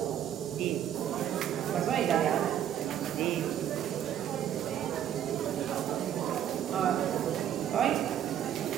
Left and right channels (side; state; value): left; quieter; 10.4 dB